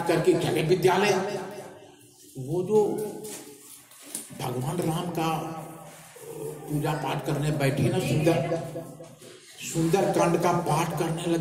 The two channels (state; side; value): identical; both; correlation 1.00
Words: करके चले विद्यालय। वो जो भगवान राम का पूजा पाठ करने बैठे ना, सुंदर कांड का पाठ करने